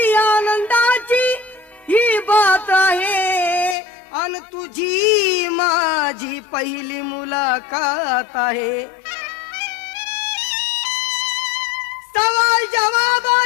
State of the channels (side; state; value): right; drops out; at 3.8 s